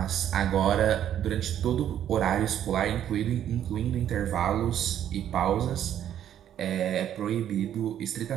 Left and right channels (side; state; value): left; quieter; 10.5 dB